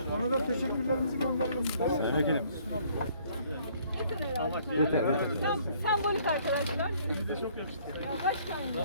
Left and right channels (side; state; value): both; inverted; correlation -0.61